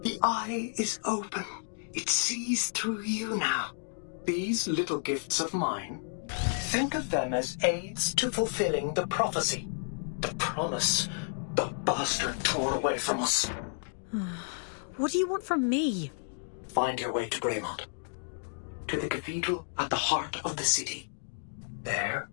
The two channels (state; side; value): silent; right; digital silence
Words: The eye is open. It sees through you now. These little gifts of mine, think of them as aids to fulfilling the prophecy, the promise the bastard tore away from us. What do you want from me? Find your way to Greymont, to the cathedral at the heart of the city. There,